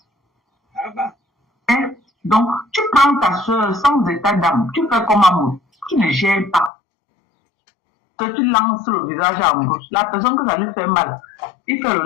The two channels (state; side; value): drops out; right; at 6.7 s